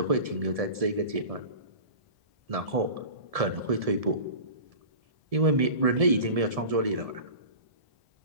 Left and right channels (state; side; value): late; left; 1.7 ms